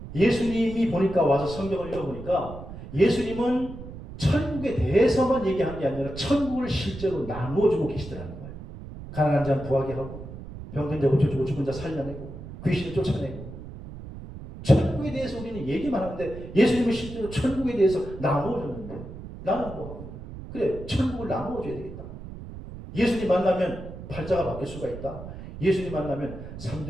예수님이 보니까 와서 성경을 읽어보니까 예수님은 천국에 대해서만 얘기한 게 아니라 천국을 실제로 나누어주고 계시더라는 거예요. 가난한 자는 부하게 하고 병든 자 고쳐주고 죽은 자 살려내고 귀신을 쫓아내고 천국에 대해서 우리는 얘기만 하는데 예수님은 실제로 천국에 대해서 나누어줬는데 나는 뭐 하고 그래 천국을 나누어줘야 되겠다. 예수님 만나면 팔자가 바뀔 수가 있다. 예수님 만나면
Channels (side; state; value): right; noise; rumble, 12 dB below the sound